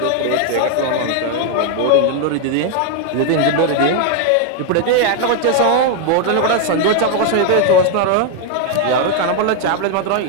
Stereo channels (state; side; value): different; both; correlation 0.00